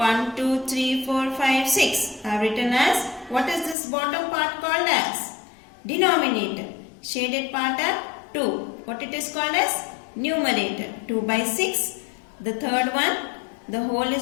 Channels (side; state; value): right; drops out; at 3.8 s